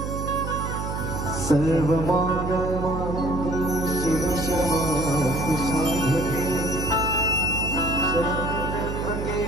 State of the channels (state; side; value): noise; right; hum, 4 dB below the sound